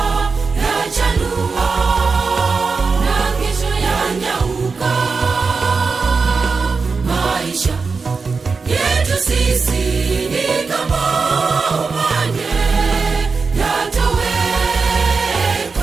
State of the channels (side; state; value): left; quieter; 4.7 dB